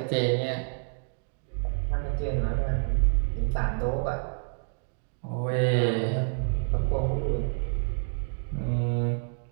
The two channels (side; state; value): left; silent; digital silence